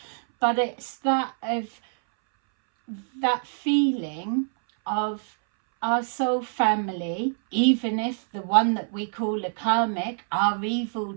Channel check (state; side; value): silent; left; 61 dB below the other